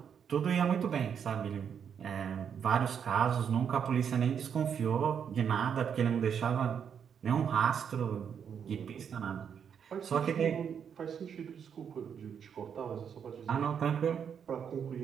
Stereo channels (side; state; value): left; quieter; 7.6 dB